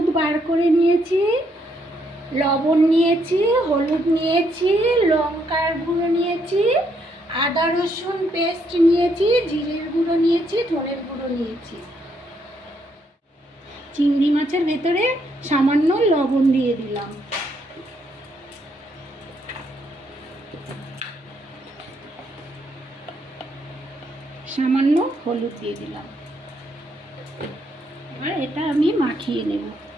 বার করে নিয়েছি, লবণ নিয়েছি, হলুদ নিয়েছি, লঙ্কার গুঁড়ো নিয়েছি, আদা রসুন পেস্ট নিয়েছি, জিরের গুঁড়ো নিয়েছি, ধনের গুঁড়ো নিয়েছি। চিংড়ি মাছের ভেতরে সামান্য লবণ দিয়ে দিলাম। সামান্য হলুদ দিয়ে দিলাম। এবার এটা আমি মাখিয়ে নেব।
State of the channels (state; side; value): normal; both; correlation 0.74